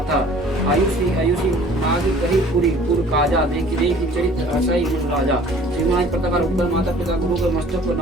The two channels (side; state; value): both; normal; correlation 0.50